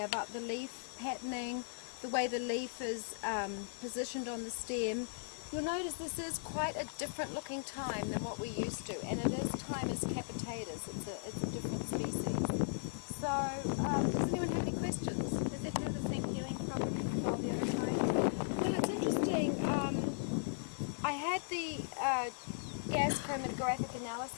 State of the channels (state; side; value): silent; right; 53 dB below the other